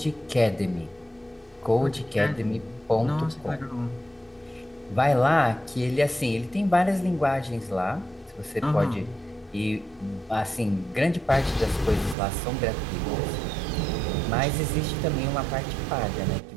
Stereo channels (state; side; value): drops out; left; at 12.2 s